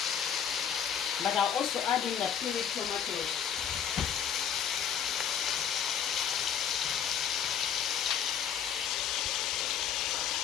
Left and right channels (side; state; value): right; quieter; 8.3 dB